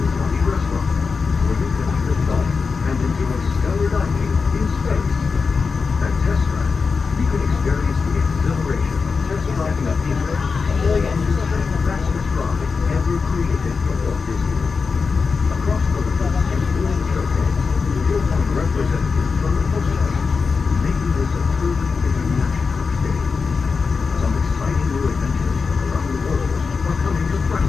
restaurant, where you can eat fun and enjoy stellar dining in space. At Test Drive, you can experience the exhilaration of test driving a vehicle all on the fastest ride ever created for Walt Disney. Across the road and during the showcase, you'll find representatives from the postcard, making this a truly international experience. Some exciting new adventures from around the world are coming to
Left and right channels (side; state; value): right; quieter; 4.9 dB